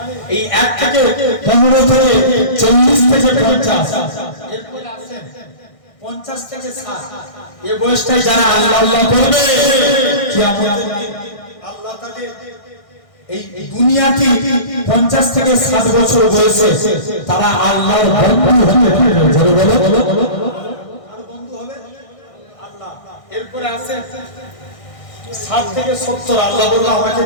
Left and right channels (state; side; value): late; right; 1.6 ms